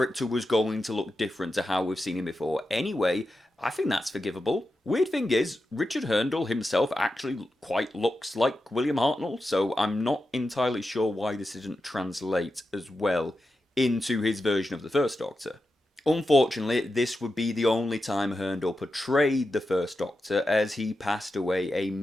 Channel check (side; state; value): both; normal; correlation 0.90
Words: was going to look different to how we've seen him before anyway, I think that's forgivable. Weird thing is, Richard Hurndall himself actually quite looks like William Hartnell, so I'm not entirely sure why this didn't translate as well into his version of the First Doctor. Unfortunately, this would be the only time Hurndall portrayed the First Doctor, as he passed away a